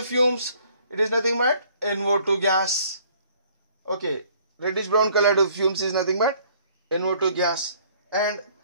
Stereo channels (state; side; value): inverted; both; correlation -0.59